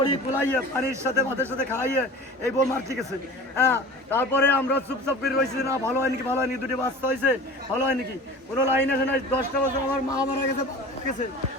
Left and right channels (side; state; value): both; normal; correlation 0.37